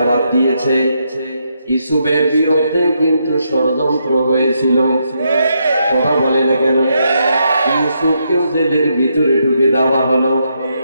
দিয়েছে, ইউসুফের বিরুদ্ধে কিন্তু ষড়যন্ত্র হয়েছিল। কথা বলে না কেন? ইউসুফকেও জেলের ভিতরে ঢুকে দেওয়া হলো।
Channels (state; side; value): inverted; both; correlation -0.79